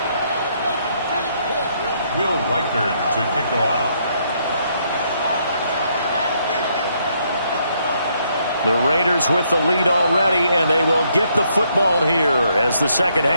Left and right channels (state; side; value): inverted; both; correlation -0.72